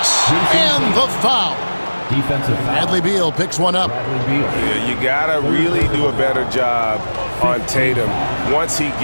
And the foul. Defensive foul. Bradley Beal picks one up. Yeah, you gotta really do a better job on Tatum once he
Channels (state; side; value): inverted; both; correlation -1.00